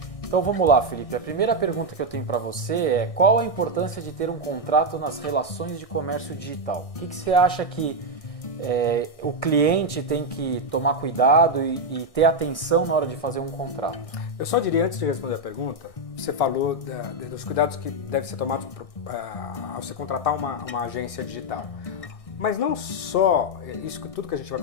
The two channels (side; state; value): right; late; 1.6 ms